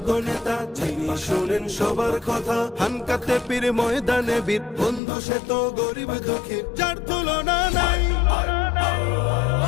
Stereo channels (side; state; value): right; drops out; at 5.0 s